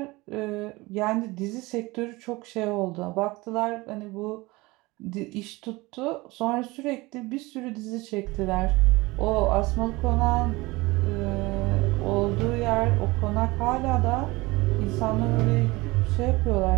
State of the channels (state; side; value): quieter; left; 22.1 dB